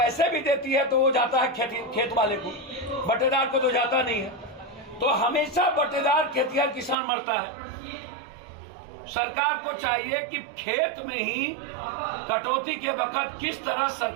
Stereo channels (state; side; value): drops out; left; at 7.0 s